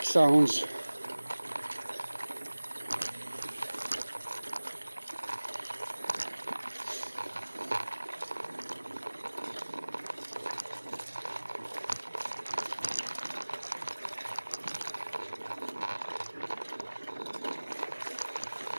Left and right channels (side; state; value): both; inverted; correlation -1.00